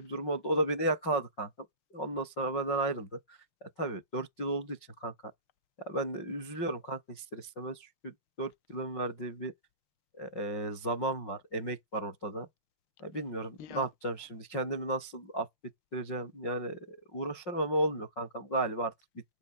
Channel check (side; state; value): right; late; 5.6 ms